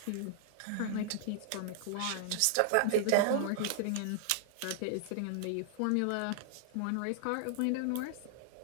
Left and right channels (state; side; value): different; both; correlation -0.01